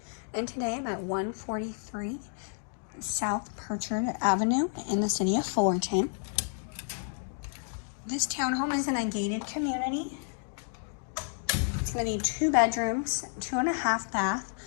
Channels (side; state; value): right; silent; 57 dB below the other